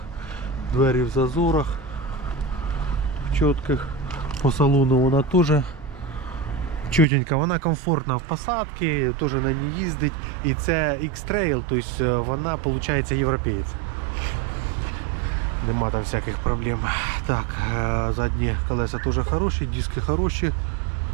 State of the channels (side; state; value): left; drops out; at 7.1 s